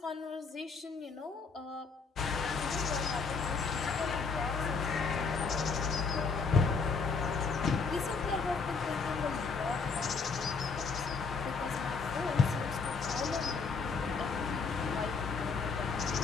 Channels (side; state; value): right; quieter; 4.9 dB